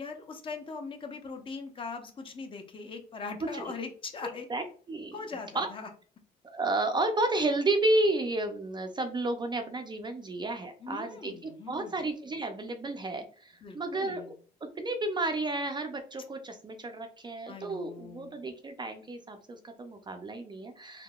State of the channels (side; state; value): both; normal; correlation 0.51